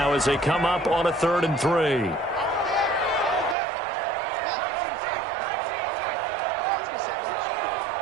as they come up on a 3rd and 3.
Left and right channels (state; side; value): drops out; left; at 3.6 s